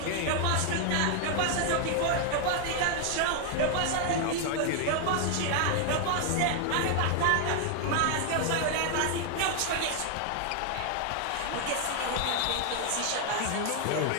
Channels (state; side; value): different; both; correlation 0.00